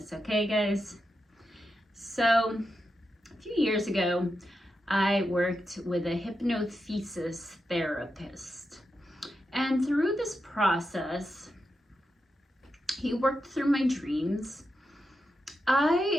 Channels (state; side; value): normal; both; correlation 0.87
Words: okay guys? So, a few years ago, I worked with a hypnothesis therapist. And through this process, he worked through my dreams.